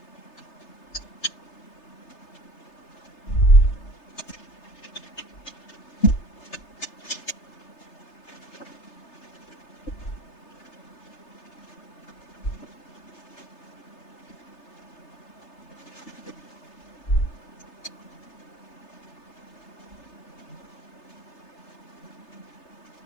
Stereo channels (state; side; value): late; right; 3.3 ms